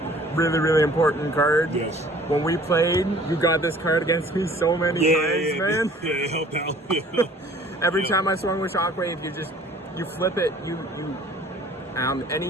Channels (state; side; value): normal; both; correlation 0.52